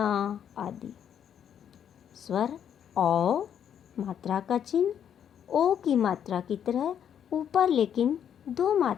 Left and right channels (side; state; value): right; quieter; 9.0 dB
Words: आदि। स्वर औ, मात्रा का चिन्ह ओ की मात्रा की तरह ऊपर लेकिन दो